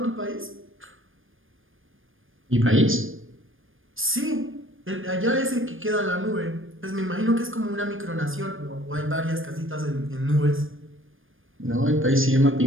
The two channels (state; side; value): late; left; 0.59 ms